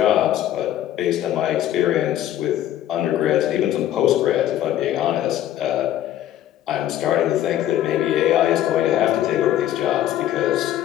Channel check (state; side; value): quieter; right; 12.3 dB